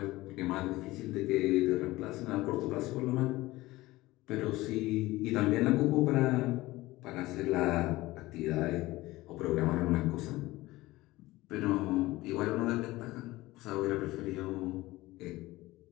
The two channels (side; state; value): right; quieter; 18.8 dB